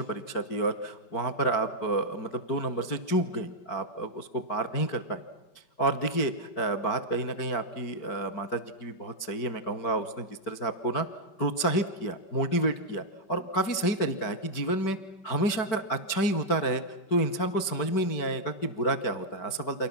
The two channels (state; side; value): late; right; 5.2 ms